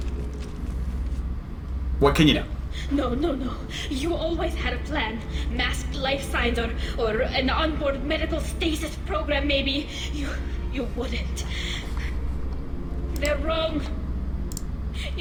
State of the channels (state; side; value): identical; both; correlation 1.00